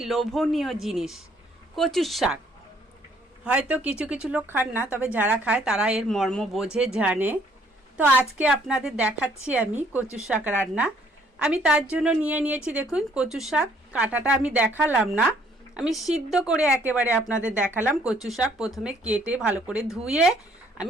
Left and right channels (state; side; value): normal; both; correlation 0.64